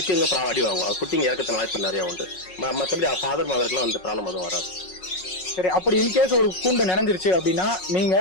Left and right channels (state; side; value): late; right; 5.4 ms